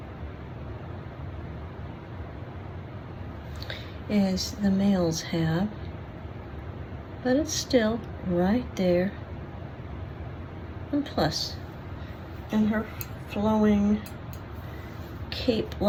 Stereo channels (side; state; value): both; identical; correlation 1.00